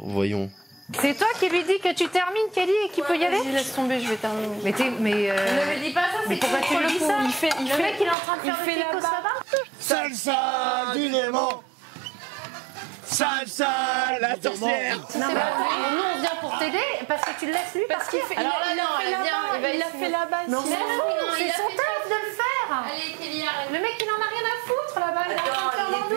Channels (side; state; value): left; drops out; at 8.2 s